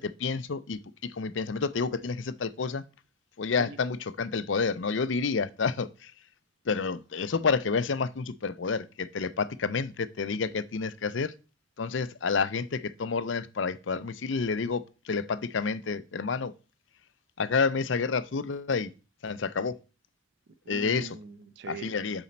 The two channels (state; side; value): quieter; right; 4.5 dB